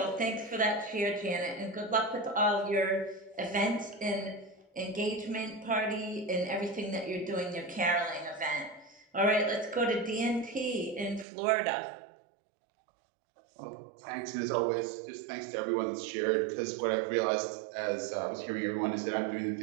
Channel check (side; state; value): left; drops out; at 11.2 s